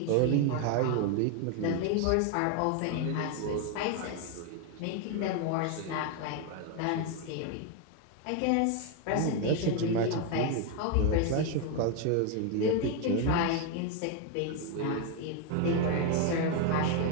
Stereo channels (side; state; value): both; different; correlation 0.01